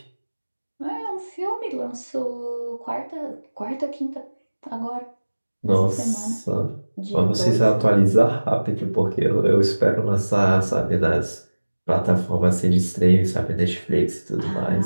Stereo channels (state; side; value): inverted; both; correlation -1.00